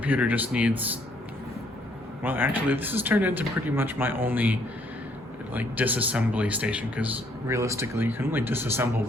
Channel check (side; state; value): both; normal; correlation 0.67